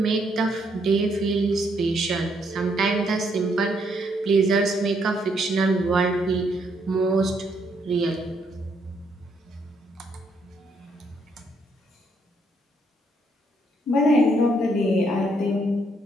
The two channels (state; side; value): normal; both; correlation 0.72